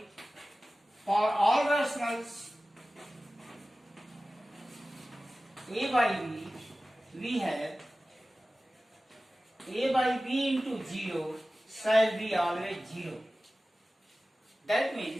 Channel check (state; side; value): normal; both; correlation 0.96